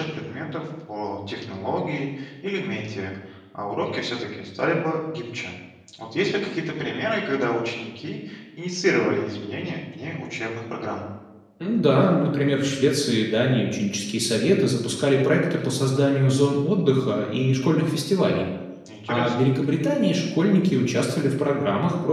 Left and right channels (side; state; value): both; identical; correlation 1.00